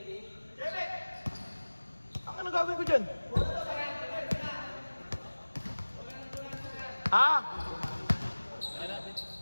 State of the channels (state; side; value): inverted; both; correlation -1.00